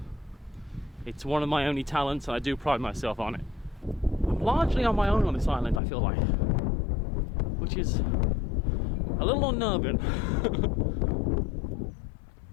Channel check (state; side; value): drops out; right; at 5.8 s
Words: It's one of my only talents, and I do pride myself on it. I'm largely on my own on this island, I feel like, which is a little unnerving.